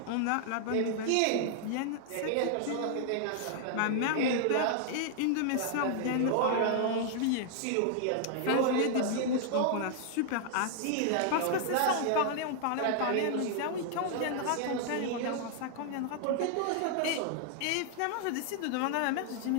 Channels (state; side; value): different; both; correlation 0.00